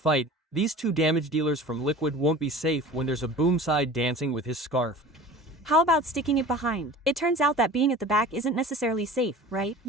these two damage dealers from Liquid won't be safe when there's a boom side dancing with his scarf. How about sticking it behind? It turns out that being at the back isn't necessarily safe, right?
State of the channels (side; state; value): both; normal; correlation 0.40